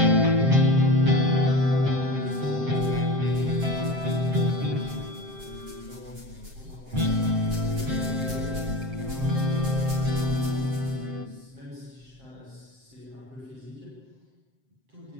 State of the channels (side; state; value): left; late; 7.6 ms